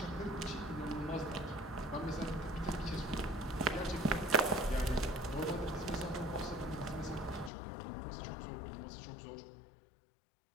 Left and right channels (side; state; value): right; drops out; at 7.5 s